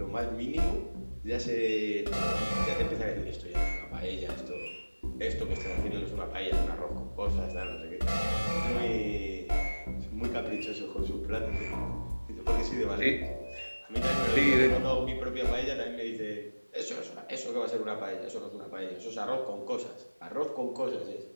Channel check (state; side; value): inverted; both; correlation -1.00